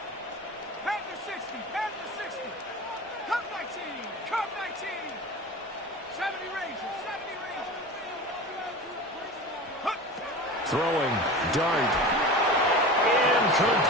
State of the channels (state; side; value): normal; both; correlation 0.33